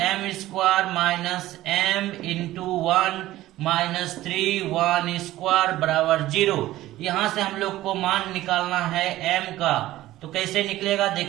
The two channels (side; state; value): left; quieter; 15.6 dB